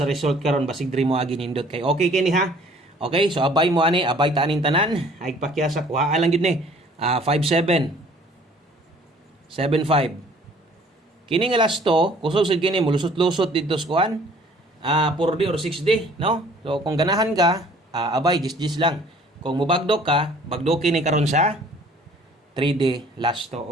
sa result karon basig diri mo agi nindot kay okay kini ha. Okay, so abay mo ani, abay ta aning tanan, ay pakyasa kuha lang gid ni. 57 75 kini nga last to kusog sad kini mulusot-lusot dito sa kuan 4D or 6D, no? So kung ganahan ka abay jis lang, kung mubagdok ka bagdoki ni karon sa 3D lasto.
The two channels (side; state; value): both; normal; correlation 0.54